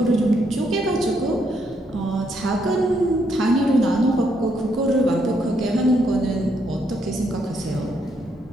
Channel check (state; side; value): normal; both; correlation 0.75